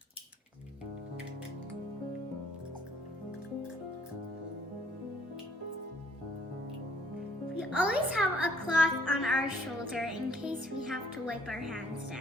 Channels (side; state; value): both; normal; correlation 0.62